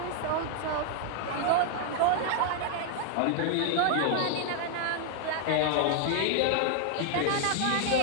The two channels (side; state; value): both; different; correlation 0.00